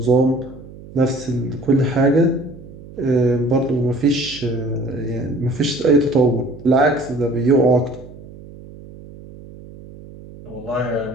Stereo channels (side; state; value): right; noise; hum, 18 dB below the sound